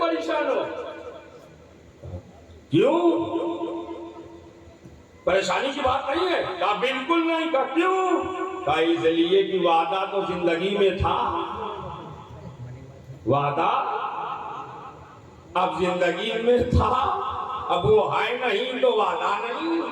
हो? क्यों, परेशानी की बात नहीं है? कहा बिल्कुल नहीं। कहा क्यों? कहा इसलिए कि वादा तो जिंदगी में था, वादा अब जिंदगी में था, अब वो है नहीं तो वादा नहीं।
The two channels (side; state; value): both; identical; correlation 1.00